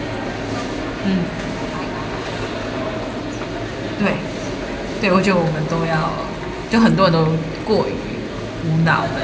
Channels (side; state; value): both; identical; correlation 1.00